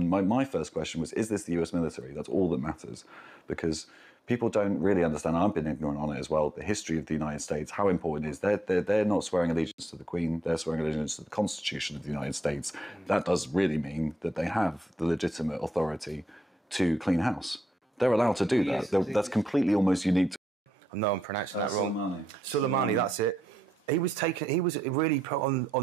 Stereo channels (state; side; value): normal; both; correlation 0.83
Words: my first question was, is this the US military? That's all that matters. Because people don't really understand, I've been ignorant on it as well, the history of the United States, how important it is. They're not swearing allegiance to the Queen, they're swearing allegiance to the Constitution of the United States. That does really mean that they have the legitimate authority to clean house. They're allowed to do that. That's completely almost unique to... I know I'm pronouncing that wrong. Soleimani, that's it. He was really put